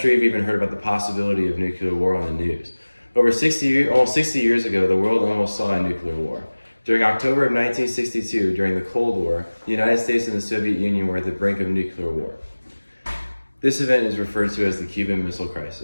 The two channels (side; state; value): both; inverted; correlation -1.00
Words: you've even heard about the possibility of nuclear war on the news. Almost 60 years ago, the world almost saw a nuclear war. During October of 1962, during the Cold War, the United States and the Soviet Union were at the brink of nuclear war. This event is referred to as the Cuban Missile